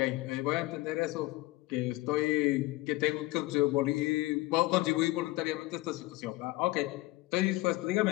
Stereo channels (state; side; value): quieter; right; 19.6 dB